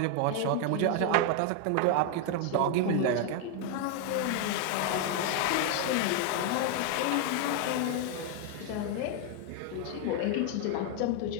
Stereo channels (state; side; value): different; both; correlation 0.01